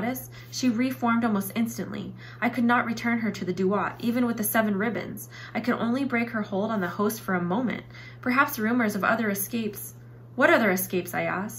she reformed almost instantly. I could not return her to the duat, even with the 7 ribbons. I could only break her hold on the host for a moment. Perhaps rumors of other escapes—" "What other escapes?" I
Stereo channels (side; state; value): both; identical; correlation 1.00